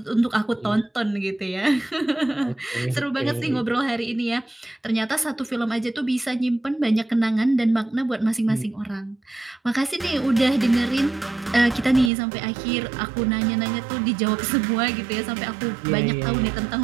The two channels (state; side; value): drops out; left; at 12.1 s